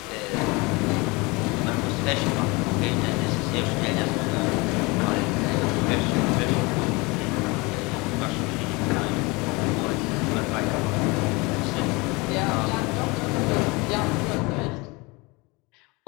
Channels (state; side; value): quieter; right; 25.8 dB